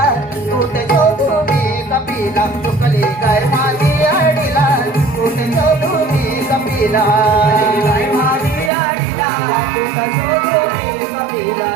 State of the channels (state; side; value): drops out; left; at 8.7 s